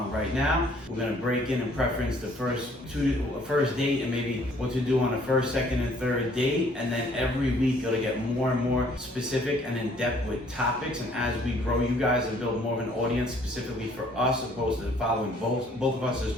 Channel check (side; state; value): both; normal; correlation 0.60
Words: right now. We're going to break in and preference the first date and maybe what to do on a first, second, and third date. And then every week it'll get more and more specific and in depth with topics. And as we grow you guys and build more of an audience specifically for us, opposed to following both of us as